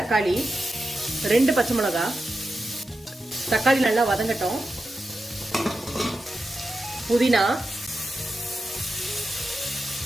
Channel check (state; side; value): normal; both; correlation 0.90